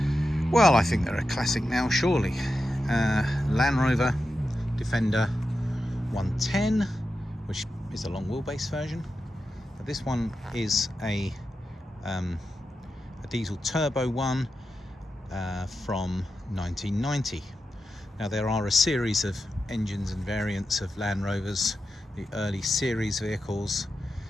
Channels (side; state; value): both; normal; correlation 0.90